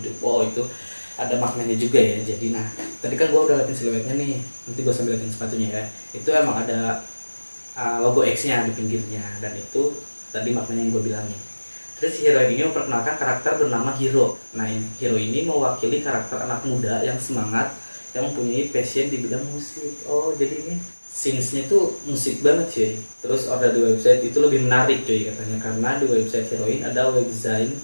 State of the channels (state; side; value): inverted; both; correlation -1.00